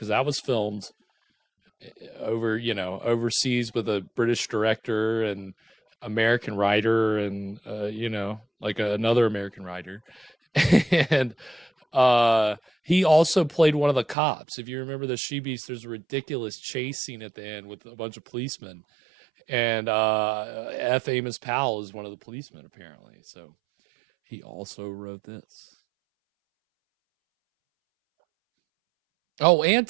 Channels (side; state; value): left; drops out; at 14.2 s